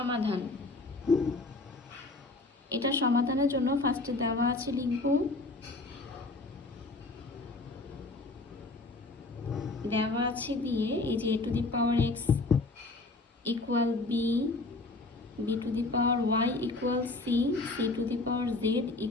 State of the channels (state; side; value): quieter; right; 3.2 dB